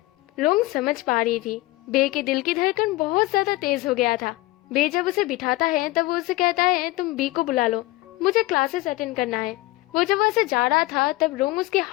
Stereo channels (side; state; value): right; quieter; 19.3 dB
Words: रोंग समझ पा रही थी बे के दिल की धड़कन बहुत ज्यादा तेज हो गया था। बे जब उसे बिठाता है तब वो उसे कहता है, तुम बी को बुला लो, मुझे क्लासेस अटेंड करना है। वो जब वहाँ से जा रहा था तब रोंग उसके